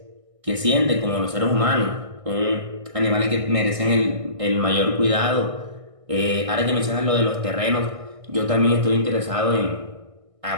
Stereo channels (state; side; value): late; left; 1.6 ms